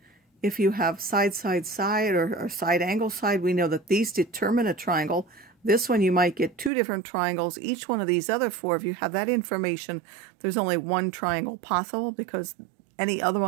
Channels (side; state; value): left; drops out; at 6.7 s